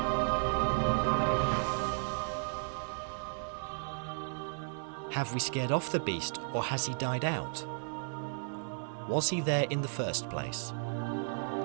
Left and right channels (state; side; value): silent; left; digital silence